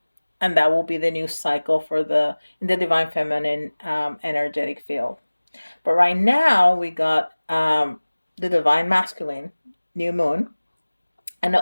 and that will be the new cycle for the in the divine feminine energetic field. But right now we got the divine masculine new moon, and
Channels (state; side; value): inverted; both; correlation -1.00